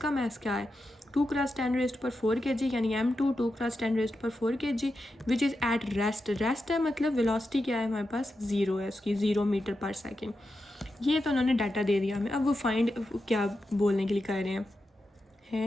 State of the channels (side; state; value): both; normal; correlation 0.89